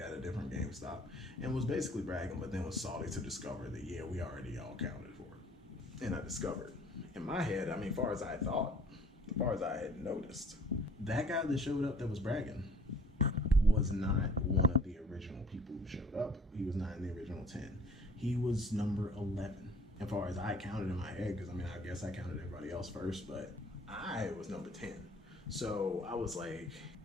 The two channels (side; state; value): both; normal; correlation 0.54